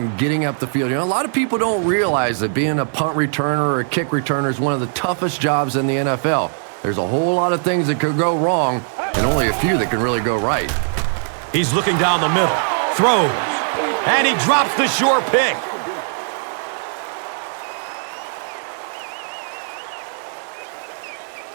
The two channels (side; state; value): left; silent; digital silence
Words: getting up the field. You know, a lot of people don't realize that being a punt returner or a kick returner is one of the toughest jobs in the NFL. There's a whole lot of things that could go wrong and only a few that can really go right. He's looking down the middle, throws, and he drops the sure pick.